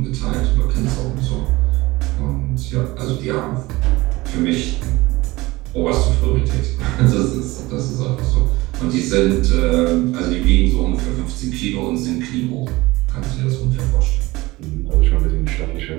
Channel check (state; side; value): quieter; left; 20.5 dB